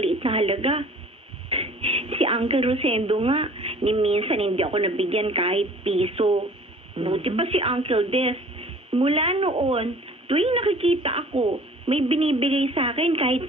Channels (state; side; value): normal; both; correlation 0.49